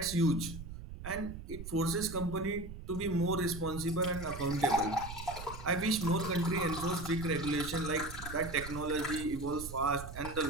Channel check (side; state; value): right; noise; rumble, 10 dB below the sound